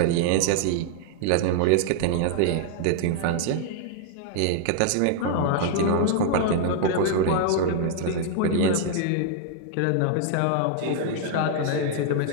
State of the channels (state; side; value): different; both; correlation 0.00